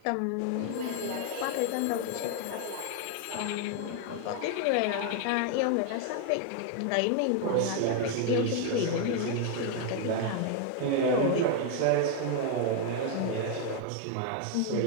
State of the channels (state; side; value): different; both; correlation 0.00